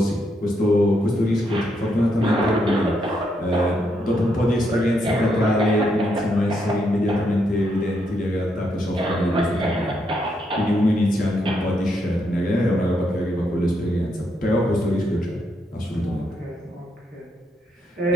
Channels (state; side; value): normal; both; correlation 0.78